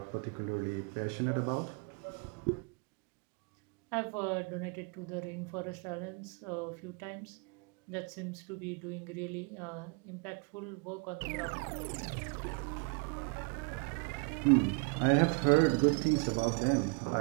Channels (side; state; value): left; quieter; 33.5 dB